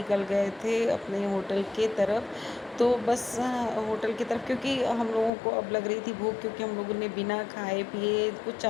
गए थे अपने होटल के तरफ। तो बस होटल की तरफ, क्योंकि हम लोगों को अब लग रही थी भूख, क्योंकि हम लोगों ने बिना खाए पिए, कुछ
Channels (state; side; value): drops out; right; at 5.3 s